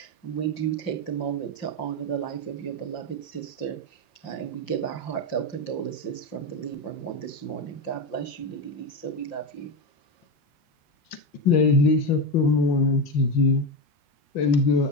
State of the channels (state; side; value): late; right; 5.7 ms